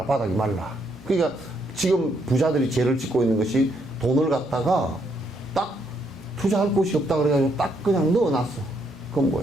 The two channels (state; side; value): normal; both; correlation 0.74